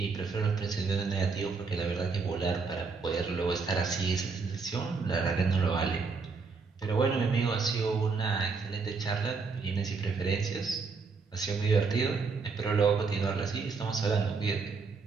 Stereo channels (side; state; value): left; quieter; 4.7 dB